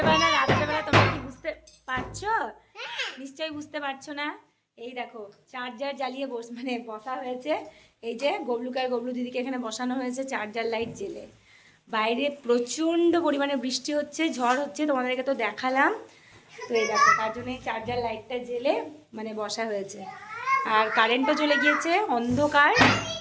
বেলা রাতের বেলা তোমরা কি বুঝতে পারছো? নিশ্চয়ই বুঝতে পারছো না। এই দেখো চার্জার জ্বালিয়ে বসা হয়েছে। এই যে গবলুকার গবলু দিদিকে এখানে বসানো হয়েছে চার্জার লাইট জেলে। বাইরে প্রচণ্ড পরিমাণে বৃষ্টি হচ্ছে, ঝড় হচ্ছে, তোমাদেরকে তো দেখালাম। তো এই দেখো তার জন্য এই চার্জার লাইটটা জেলে বসা হয়েছে। আর কারেন্টও চলে গিয়েছে, অন্ধকার।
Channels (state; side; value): identical; both; correlation 1.00